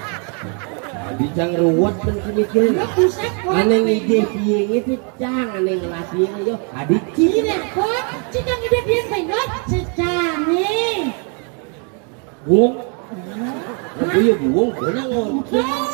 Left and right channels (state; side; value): quieter; left; 38.6 dB